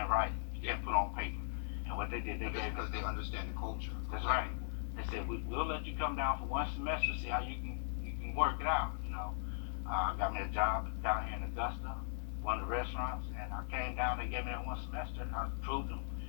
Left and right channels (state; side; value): silent; right; 52 dB below the other